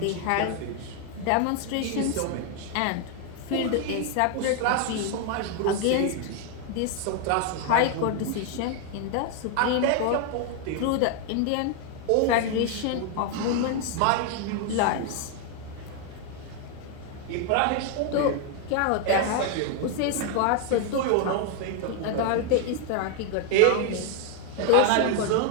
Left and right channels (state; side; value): different; both; correlation 0.00